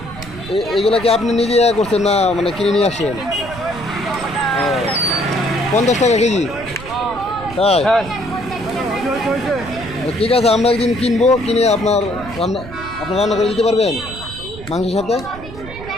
এইগুলা কি আপনি নিজে করছেন না মানে কিনে নিয়ে আসেন? 50 টাকা কেজি, তাই? ঠিক আছে, আমরা একদিন কিনবো, কিনে আপনার রান্না করে দিতে পারবেন মাংসের সাথে,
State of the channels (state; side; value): noise; right; rumble, 14 dB below the sound